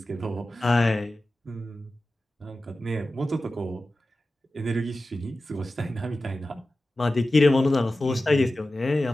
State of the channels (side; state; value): both; normal; correlation 0.94